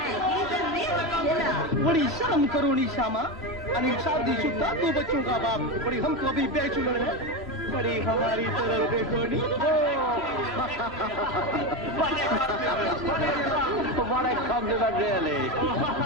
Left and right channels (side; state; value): both; normal; correlation 0.16